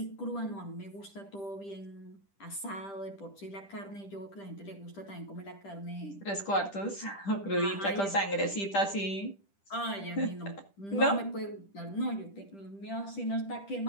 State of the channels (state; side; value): late; right; 10 ms